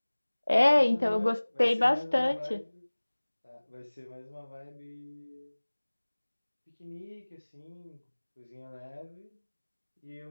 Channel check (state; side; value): inverted; both; correlation -1.00